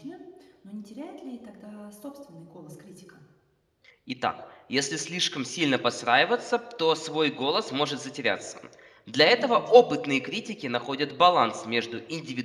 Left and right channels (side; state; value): both; identical; correlation 1.00